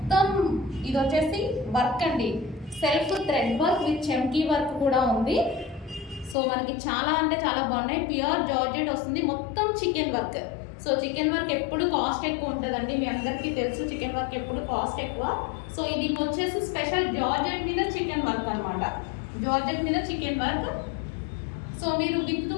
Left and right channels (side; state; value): right; drops out; at 6.4 s